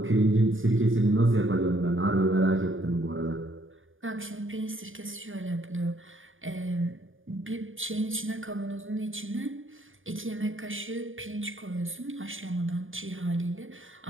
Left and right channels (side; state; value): left; late; 0.58 ms